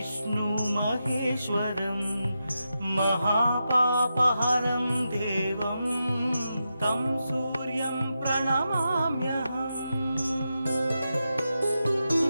महेश्वरं महापापहरं देवं तं सूर्यं प्रणमाम्यहम्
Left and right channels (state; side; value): inverted; both; correlation -0.88